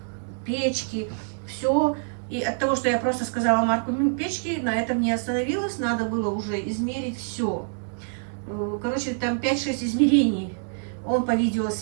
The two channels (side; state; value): left; silent; digital silence